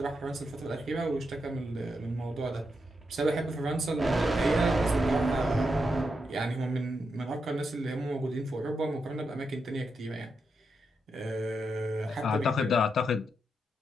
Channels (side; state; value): both; normal; correlation 0.84